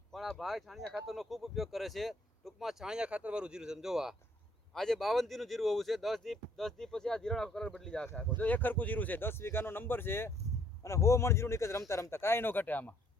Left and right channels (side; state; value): both; normal; correlation 0.64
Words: પણ આ ભાઈ છાણિયા ખાતરનો ખૂબ ઉપયોગ કરે છે. ટૂંકમાં છાણિયા ખાતરવાળું જીરું છે. જોવા આજે 52 દીનું જીરું હોવું છે. 10 દી પછી આ જીરાનો કલર બદલી જશે આખો. જો એક હરખું જીરું છે, 10 વીઘાનો નંબર છે અને 100 મણ જીરું નીકળે રમતા રમતા, કાંઈ ન ઘટે આમાં.